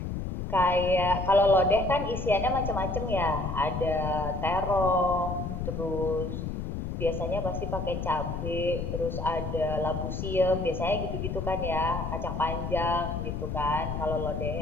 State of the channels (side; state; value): left; noise; rumble, 4 dB below the sound